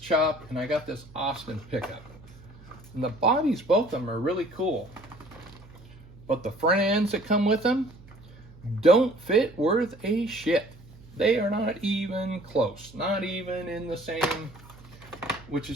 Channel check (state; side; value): noise; right; hum, 22 dB below the sound